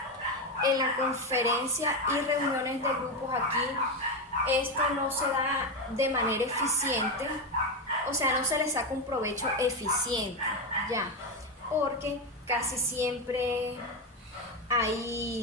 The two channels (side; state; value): both; normal; correlation 0.11